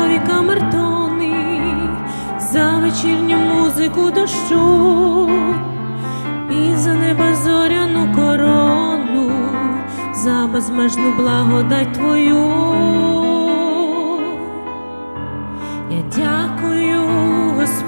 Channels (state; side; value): inverted; both; correlation -1.00